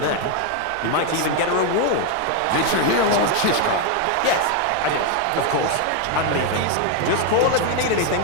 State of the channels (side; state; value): both; different; correlation 0.01